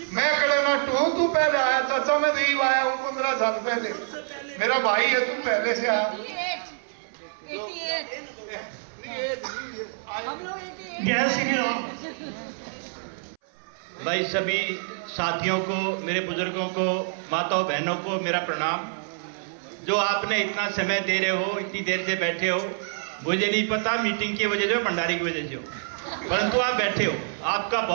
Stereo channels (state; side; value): silent; left; 61 dB below the other